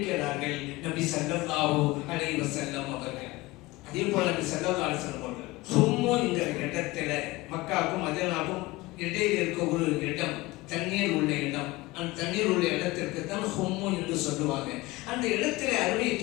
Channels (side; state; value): right; quieter; 20.6 dB